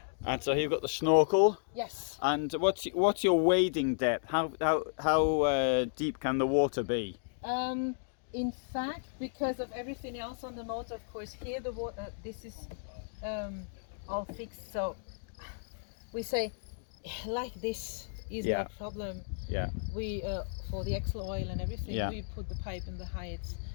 And so you've got the snorkel. Yes. And what's your wading depth? How deep can the water be? In fact, because of everything else on the motor, of course, here the water, this is all fixed. So we say like this is no problem. Yeah. We for the axle oil and everything, we put the pipe in the heights.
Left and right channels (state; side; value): silent; right; digital silence